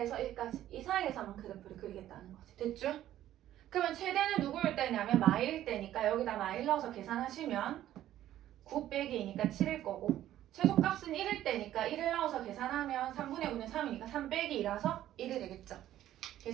1까지 이 사이에서만 그래프를 그리겠다는 거지. 됐죠? 그러면 최대는 누구일 때냐면 마일일 때니까 여기다 마일 넣어서 계산하시면 9 빼기 2니까 7일 거고 최소값은 1일 때니까 1을 넣어서 계산하면 3분의 9는 3이니까 3 빼기 2라서 1이 되겠죠.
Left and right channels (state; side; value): quieter; left; 12.7 dB